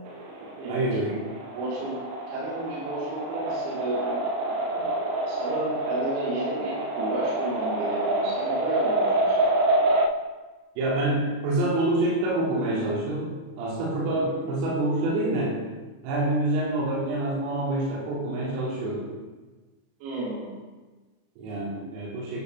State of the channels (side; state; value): left; late; 37 ms